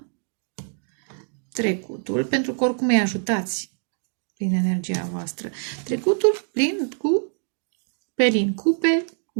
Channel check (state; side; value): silent; left; 61 dB below the other